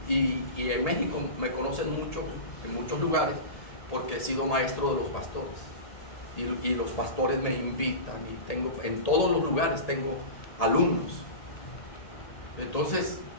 Y en México me conocen mucho, en muchos lugares, porque he sido maestro de los pastores. y los pastores me invitan y tengo, en todos los lugares tengo alumnos. Entonces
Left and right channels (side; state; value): right; late; 1.8 ms